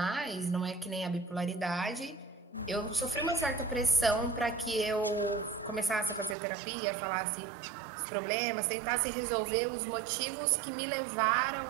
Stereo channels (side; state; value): left; drops out; at 6.4 s